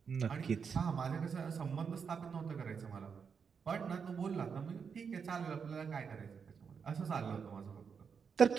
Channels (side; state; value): left; quieter; 6.3 dB